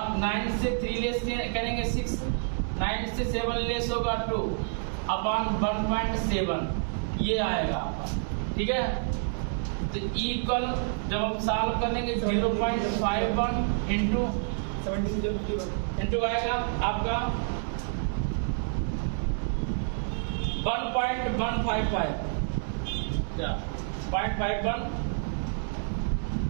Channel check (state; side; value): silent; left; 59 dB below the other